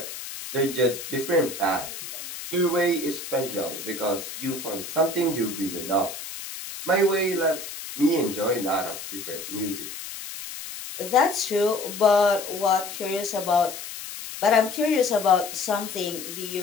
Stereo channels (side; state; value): left; noise; hiss, 10 dB below the sound